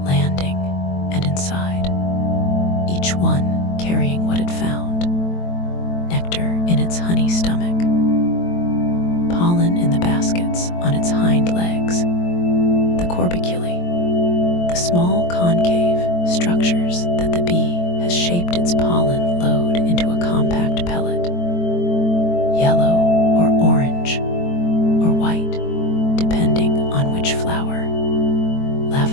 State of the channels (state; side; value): late; right; 23 ms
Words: landing and inside, each one carrying what it found: nectar in its honey stomach, pollen in the baskets on its hind legs, the corbiculae, the small concave structures that the bee has shaped its pollen load into a compact pellet, yellow or orange or white, depending on which flower.